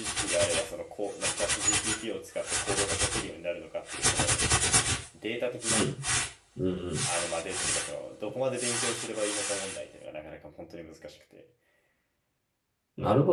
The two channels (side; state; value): both; identical; correlation 1.00